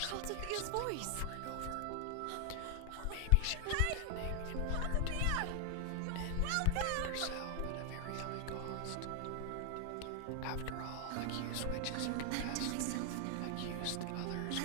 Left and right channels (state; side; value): different; both; correlation 0.00